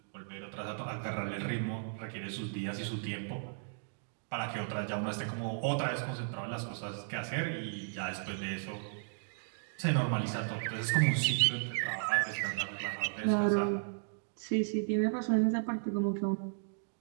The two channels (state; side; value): silent; left; digital silence